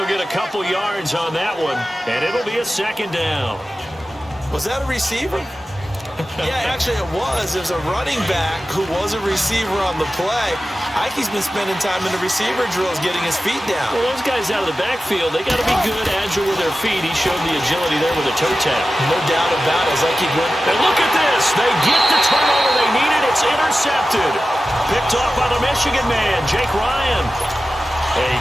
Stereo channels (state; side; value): normal; both; correlation 0.94